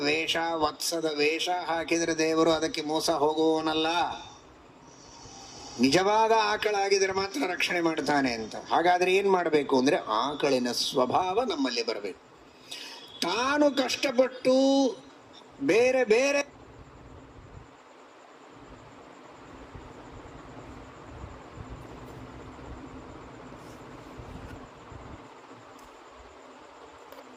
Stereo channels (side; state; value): both; identical; correlation 1.00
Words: ವೇಷ, ವತ್ಸದ ವೇಷ ಹಾಕಿದರೆ ದೇವರು ಅದಕ್ಕೆ ಮೋಸ ಹೋಗುವವನಲ್ಲ. ನಿಜವಾದ ಆಕಳಾಗಿದ್ರೆ ಮಾತ್ರ ರಕ್ಷಣೆ ಮಾಡ್ತಾನೆ ಅಂತ. ಹಾಗಾದ್ರೆ ಏನ್ ಮಾಡಬೇಕು ಅಂದ್ರೆ ಆಕಳಿನ ಸ್ವಭಾವ ನಮ್ಮಲ್ಲಿ ಬರಬೇಕು. ತಾನು ಕಷ್ಟಪಟ್ಟು ಬೇರೆ ಬೇರೆ